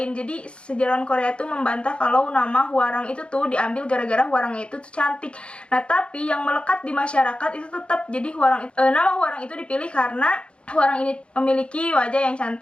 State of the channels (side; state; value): right; late; 0.058 ms